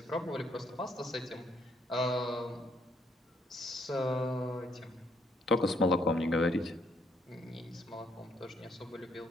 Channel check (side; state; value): both; normal; correlation 0.70